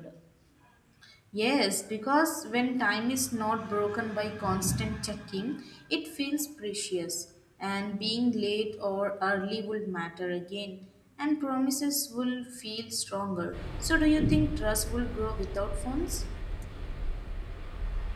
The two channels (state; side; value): identical; both; correlation 1.00